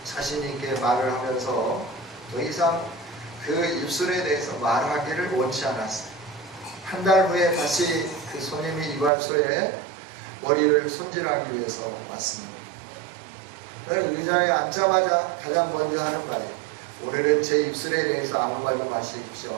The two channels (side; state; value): left; drops out; at 9.1 s